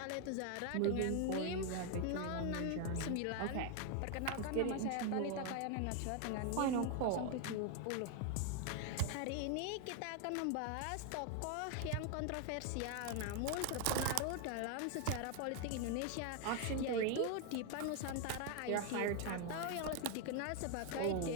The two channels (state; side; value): different; both; correlation 0.01